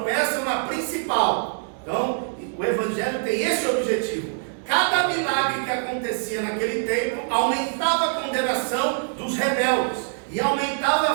na principal. Então, o Evangelho tem esse objetivo. Cada milagre que acontecia naquele tempo aumentava a condenação dos rebeldes e aumentava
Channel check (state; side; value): silent; left; digital silence